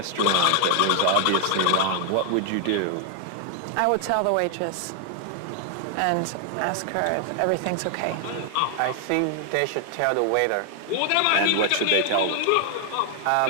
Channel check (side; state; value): both; different; correlation 0.00